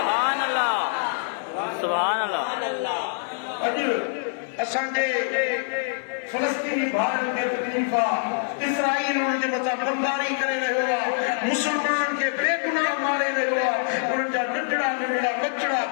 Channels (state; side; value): silent; right; digital silence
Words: अल्लाह, सुभान अल्लाह। अॼु असांजे फलस्तीनी भाउरनि खे तकलीफ़ आहे, इसराईल उन्हनि जे मथां बमबारी करे रहियो आहे, मुसलमान खे बेगुनाह मारे रहियो आहे। उन्हनि जा नंढड़ा नंढड़ा बचड़ा